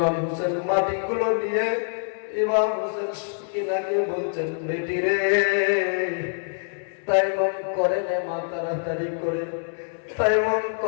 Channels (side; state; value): right; silent; digital silence